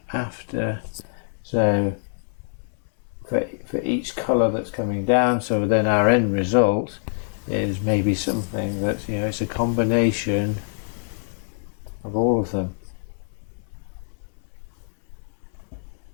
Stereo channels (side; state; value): right; silent; digital silence